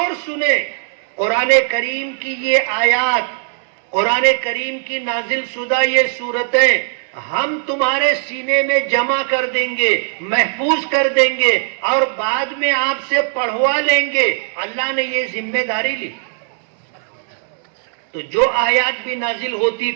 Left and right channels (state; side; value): silent; left; digital silence